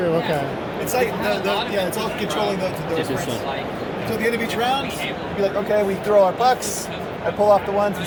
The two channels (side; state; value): both; identical; correlation 1.00